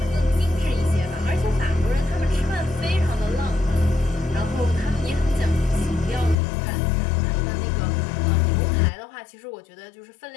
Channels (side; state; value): right; drops out; at 6.4 s